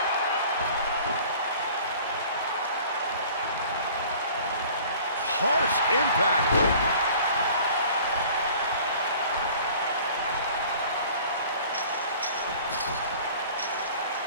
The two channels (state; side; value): inverted; both; correlation -0.48